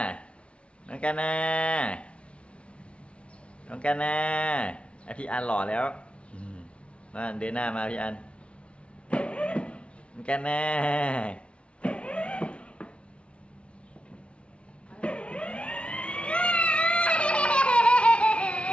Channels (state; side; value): late; right; 0.060 ms